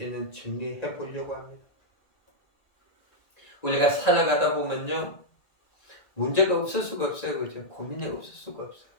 정리해 보려고 합니다. 우리가 살아가다 보면요. 문제가 없을 수가 없어요. 그죠? 고민이 없을 수가 없어요.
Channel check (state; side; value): late; right; 1.9 ms